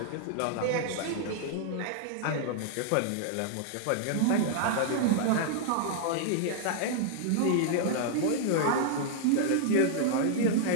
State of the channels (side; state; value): both; different; correlation -0.01